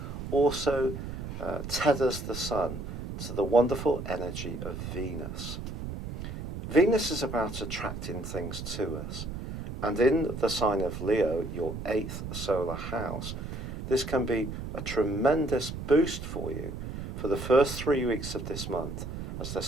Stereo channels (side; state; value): right; noise; rumble, 7 dB below the sound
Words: also tethers the Sun to the wonderful energy of Venus. Venus is about attracting things to us, and in the sign of Leo, your 8th solar house, this can be a tremendous boost for you for the first 3 weeks of this month, as they're